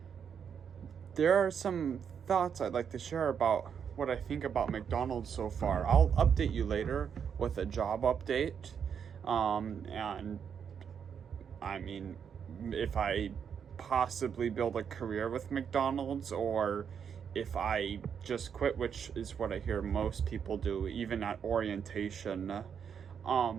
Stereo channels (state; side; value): quieter; left; 7.4 dB